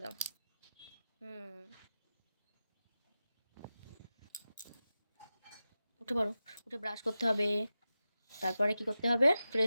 দাও। উঠে পড়ো, উঠে ব্রাশ করতে হবে, তারপরে কি করতে হবে,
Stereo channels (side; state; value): both; inverted; correlation -0.93